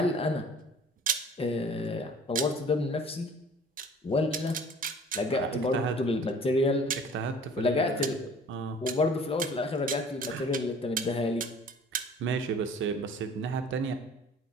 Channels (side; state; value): both; normal; correlation 0.49